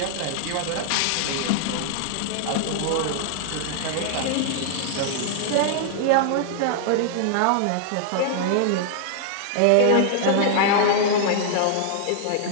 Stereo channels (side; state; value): both; different; correlation -0.01